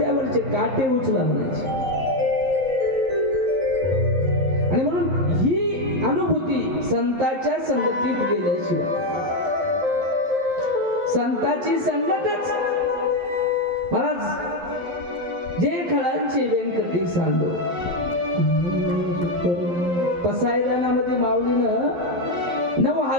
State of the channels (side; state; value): left; late; 12 ms